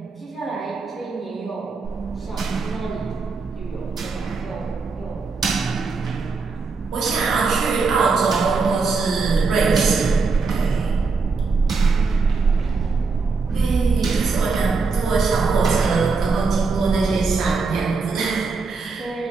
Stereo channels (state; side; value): quieter; left; 4.4 dB